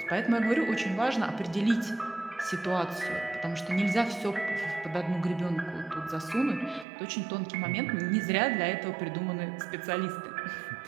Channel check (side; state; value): left; drops out; at 6.9 s